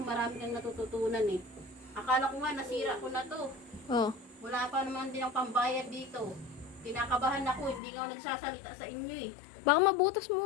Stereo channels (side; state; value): right; drops out; at 7.8 s